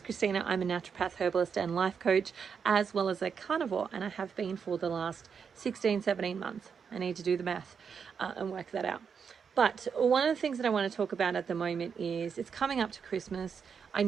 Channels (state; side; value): quieter; left; 6.5 dB